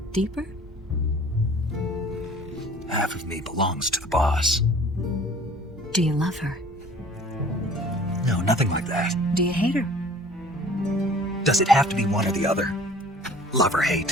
Deeper? Half of me belongs to the boss. Do you love her? No, nothing like that. Do you hate her? Does it have to be one or the other? Love or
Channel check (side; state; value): both; normal; correlation 0.49